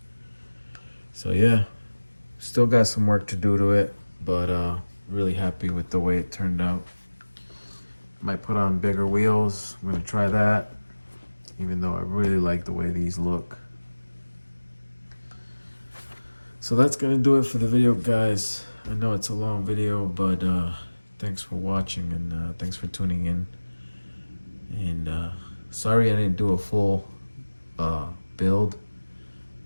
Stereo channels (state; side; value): inverted; both; correlation -1.00